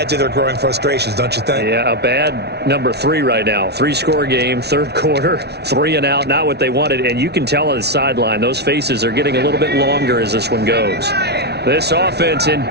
to their growing frustrations, don't you think? Yeah, a bad number 3 right now. 3-score game, third quarter, 3 and out, not what they wanted. And you can tell on the sideline, those faces are getting a little bit longer as this one goes. This offense in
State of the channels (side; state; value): left; late; 0.49 ms